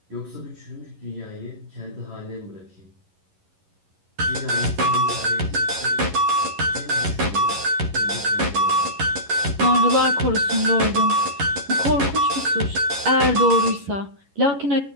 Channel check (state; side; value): late; left; 11 ms